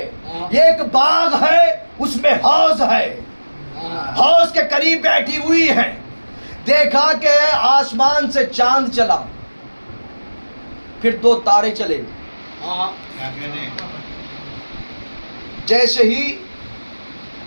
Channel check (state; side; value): inverted; both; correlation -1.00